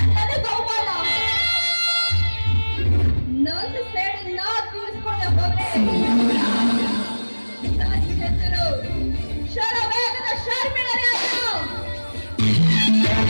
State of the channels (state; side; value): inverted; both; correlation -1.00